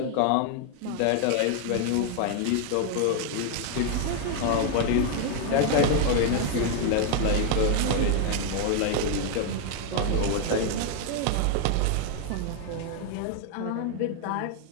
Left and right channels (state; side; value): different; both; correlation 0.01